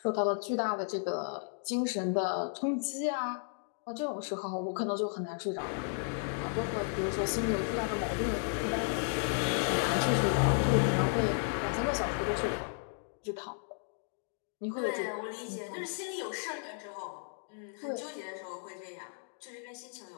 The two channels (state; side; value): silent; right; digital silence